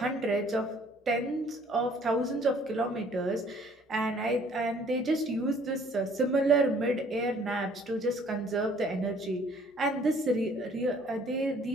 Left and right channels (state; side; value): normal; both; correlation 0.58